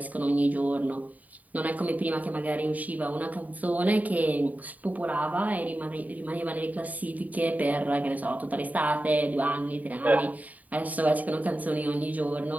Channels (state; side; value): late; left; 0.074 ms